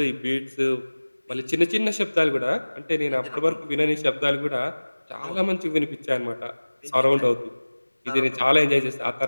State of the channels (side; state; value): both; inverted; correlation -1.00